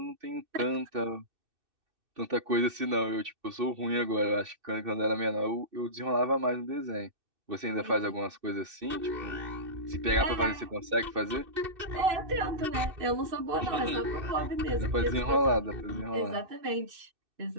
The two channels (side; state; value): left; late; 2.6 ms